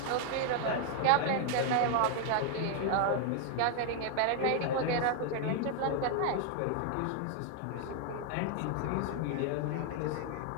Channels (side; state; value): both; different; correlation 0.00